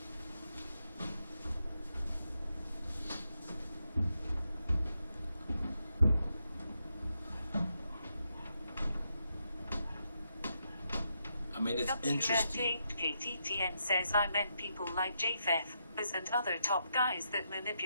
I mean, it's interesting. KTTN says I meant people like JFF and other top guys that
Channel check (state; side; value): inverted; both; correlation -0.82